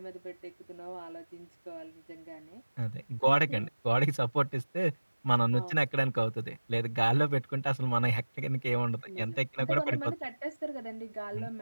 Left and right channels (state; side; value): inverted; both; correlation -1.00